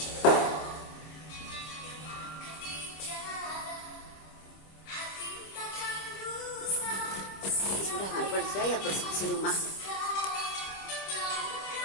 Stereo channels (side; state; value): right; late; 26 ms